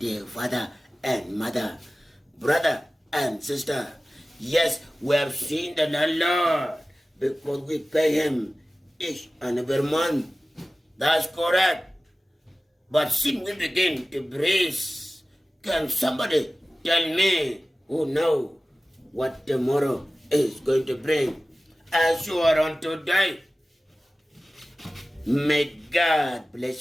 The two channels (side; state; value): both; normal; correlation 0.96